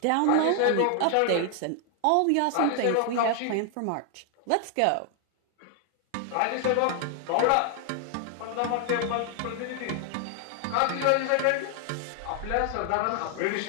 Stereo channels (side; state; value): both; different; correlation 0.00